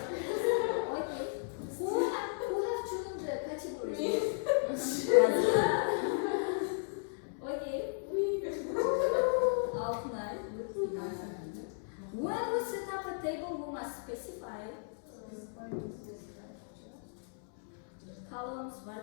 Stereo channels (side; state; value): right; silent; digital silence